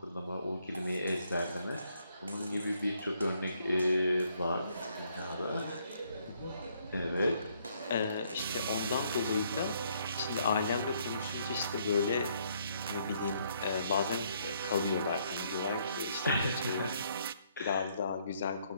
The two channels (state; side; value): inverted; both; correlation -0.69